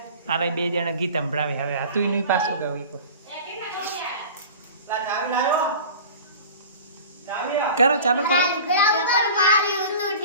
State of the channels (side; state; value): both; inverted; correlation -0.39